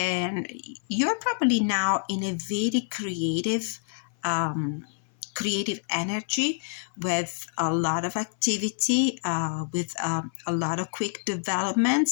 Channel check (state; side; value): silent; right; 59 dB below the other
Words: you're probably now in a very creative energy with a lot of activity, with a lot of quick